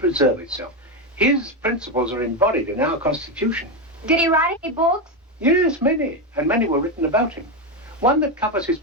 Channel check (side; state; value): both; normal; correlation 0.09